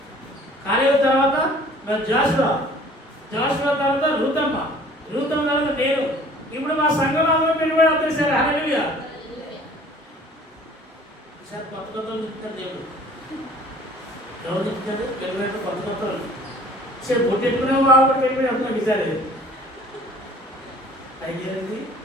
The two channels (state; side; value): normal; both; correlation 0.51